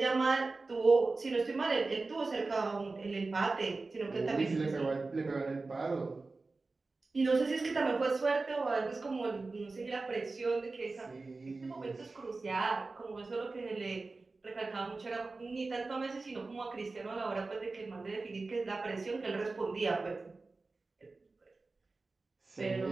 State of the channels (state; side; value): quieter; left; 3.7 dB